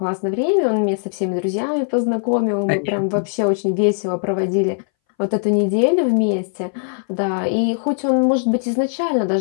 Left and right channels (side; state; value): right; silent; 63 dB below the other